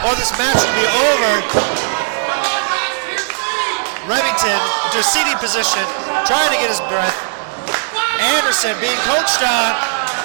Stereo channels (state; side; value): silent; left; 66 dB below the other